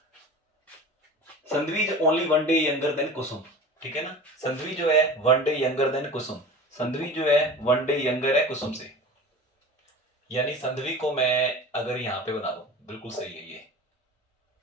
Sandhvi is only 1 day younger than Kusum, ठीक है ना। संधवी जो है 1 day younger than Kusum, Sandhvi जो है 1 डे यंगर है कुसुम से, यानी संधवी को मैं अगर यहां पे बना दूं, बिल्कुल सही है ये,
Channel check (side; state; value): both; normal; correlation 0.36